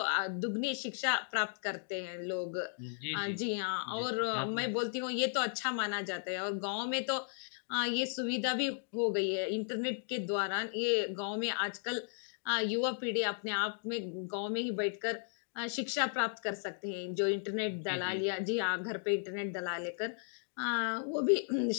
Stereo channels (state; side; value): silent; right; digital silence